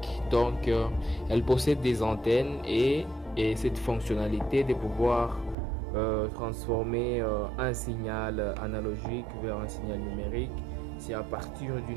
Elle possède des antennes et cette fonctionnalité de pouvoir transformer un signal analogique vers un signal numérique, c'est à partir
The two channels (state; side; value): drops out; left; at 5.6 s